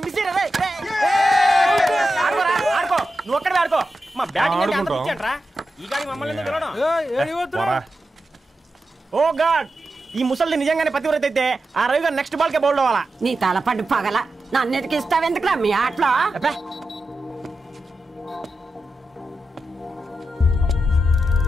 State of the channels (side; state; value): both; normal; correlation 0.90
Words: ఆడుకో నువ్వు ఒక్కడే ఆడుకో. మా బ్యాటింగ్ ఈ గాడి మమ్మల్ని. ఓ గాడ్, ఈ ముసలిది నిజంగానే పతివ్రత అయితే ఆ రవి గారు నెక్స్ట్ బాల్ కే బౌల్డ్ అవ్వాలా. నీ తలపడి పగల నన్నిటికి ఇస్తావెందుకురా మీ ఆటలో?